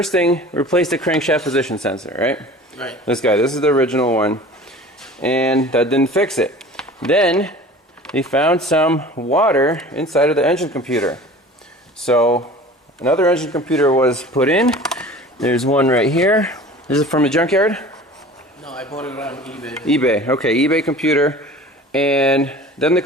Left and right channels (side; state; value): both; normal; correlation 0.42